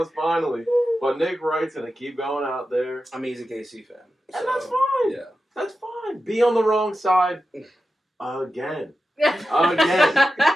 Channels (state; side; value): normal; both; correlation 0.92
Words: us finally. But Nick Wright's going to keep going out there. I mean, he's a KC fan. And that's fine. Yeah. That's fine. Be on the wrong side again. Again.